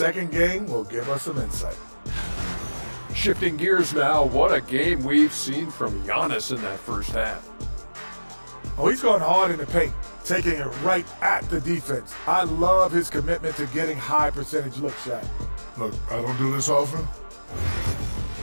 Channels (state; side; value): inverted; both; correlation -1.00